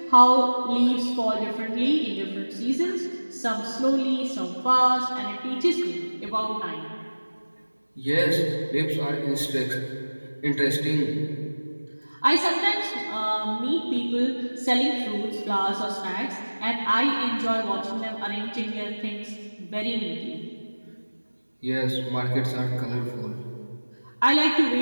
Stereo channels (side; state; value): both; inverted; correlation -1.00